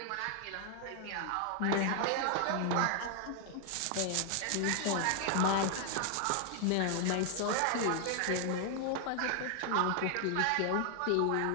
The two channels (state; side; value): different; both; correlation 0.00